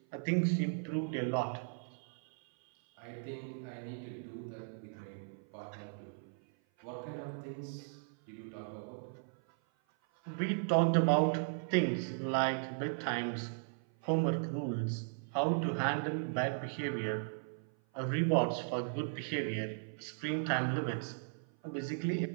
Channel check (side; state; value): left; silent; 53 dB below the other